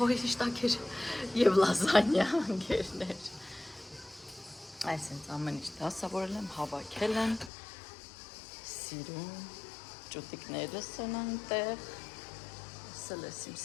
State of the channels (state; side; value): drops out; right; at 7.5 s